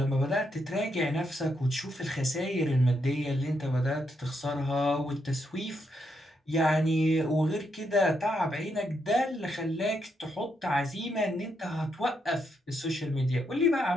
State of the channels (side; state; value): both; normal; correlation 0.79